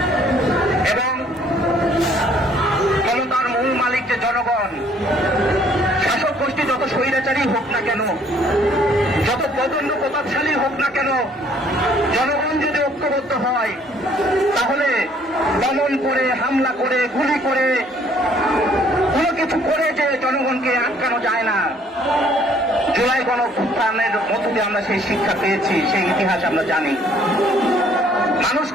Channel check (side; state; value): both; normal; correlation 0.61